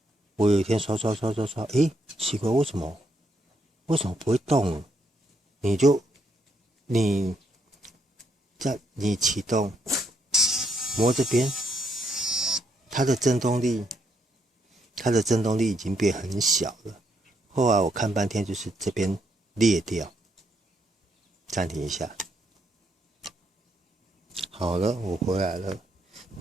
我有一天刷，奇怪，为什么不会动？你启动，摸这边，它的震动力已经变很小了。后来我看半天，就是这边裂掉。暂停一下，好了，我回来了。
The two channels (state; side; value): normal; both; correlation 0.74